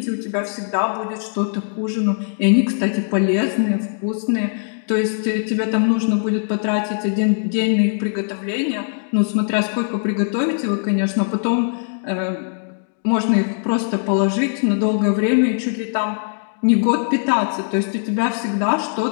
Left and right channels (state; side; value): silent; right; digital silence